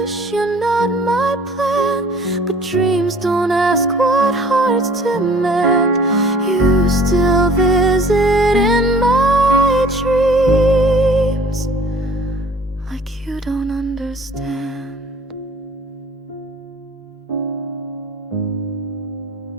you're not my plan, but dreams don't ask what hearts demand. You still visit in my dreams, like you don't understand.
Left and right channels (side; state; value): both; normal; correlation 0.51